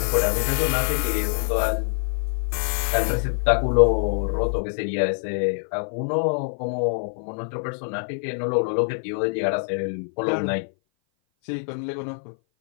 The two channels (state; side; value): silent; right; 58 dB below the other